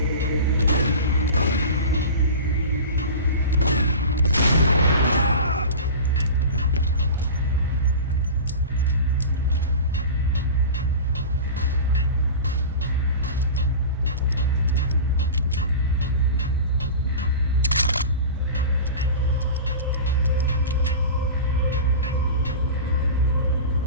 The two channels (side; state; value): both; inverted; correlation -0.32